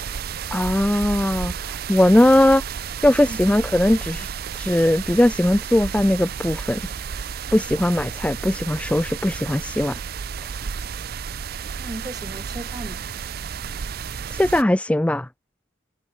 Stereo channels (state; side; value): normal; both; correlation 0.92